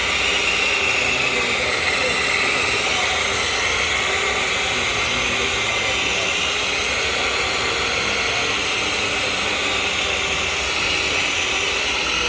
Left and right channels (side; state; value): both; identical; correlation 1.00